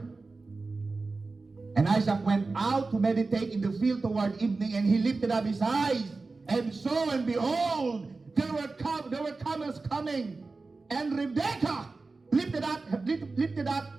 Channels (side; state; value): left; quieter; 3.8 dB